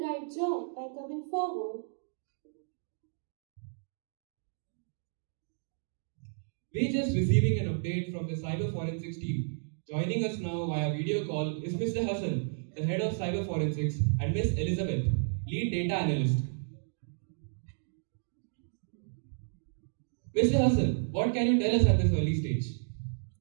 right job by coming forward. We're just receiving an update from the cyber forensics team. Joining us now via video call is Mr. Hassan, the head of cyber forensics, and Ms. Elizabeth, lead data analyst. Mr. Hassan, what can you tell us at this early stage?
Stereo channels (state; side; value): silent; left; digital silence